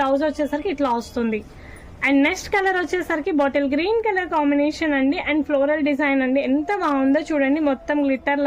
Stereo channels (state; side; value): identical; both; correlation 1.00